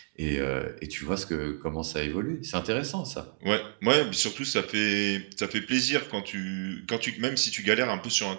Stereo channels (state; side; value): silent; left; digital silence